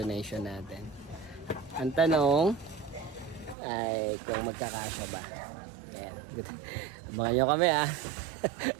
natin. Ang tanong ay kung magkakasya ba. Ayan, good. Abangan nyo kami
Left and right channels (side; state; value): left; drops out; at 3.6 s